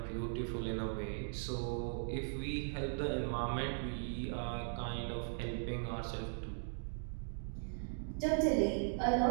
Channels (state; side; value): silent; left; digital silence